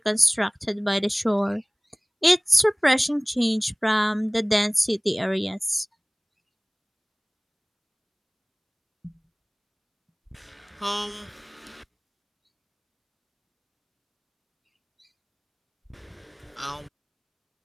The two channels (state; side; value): identical; both; correlation 1.00